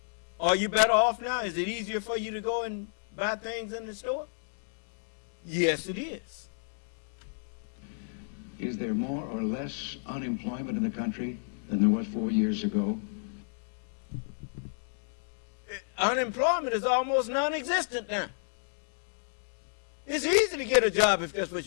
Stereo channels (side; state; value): right; silent; digital silence